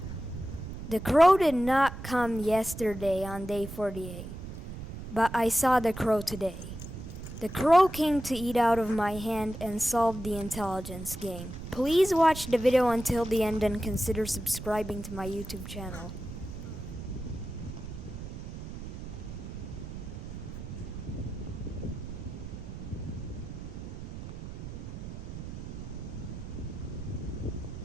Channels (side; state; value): right; noise; rumble, 9 dB below the sound